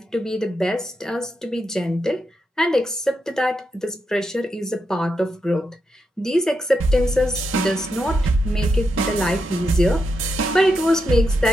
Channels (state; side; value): normal; both; correlation 0.84